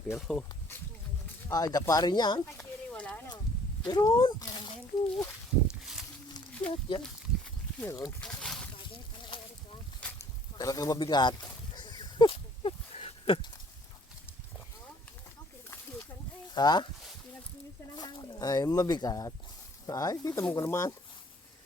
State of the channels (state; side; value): normal; both; correlation 0.58